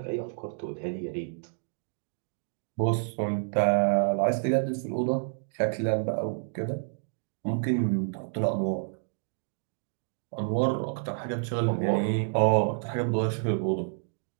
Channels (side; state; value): left; silent; digital silence